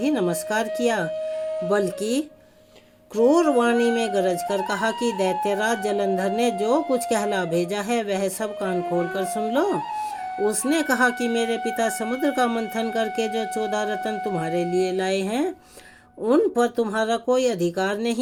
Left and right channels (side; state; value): both; identical; correlation 1.00